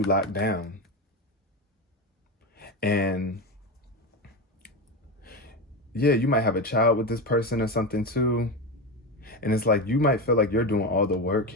locked down. And yeah, you might have a child with this person or something too. And it's like you might feel like you're doing all the work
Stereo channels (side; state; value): both; normal; correlation 0.17